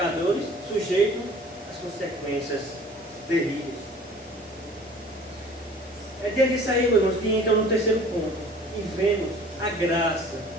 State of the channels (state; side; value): normal; both; correlation 0.48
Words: sujeitos às consequências terríveis. É diante disso aí, meus irmãos, que entra no terceiro ponto, e vemos a graça